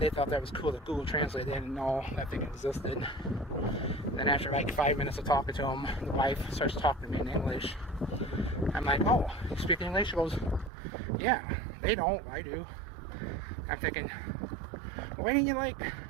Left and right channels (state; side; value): drops out; left; at 10.7 s